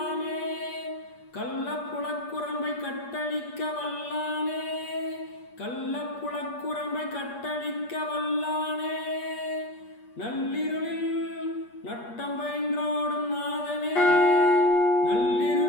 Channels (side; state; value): right; late; 8.4 ms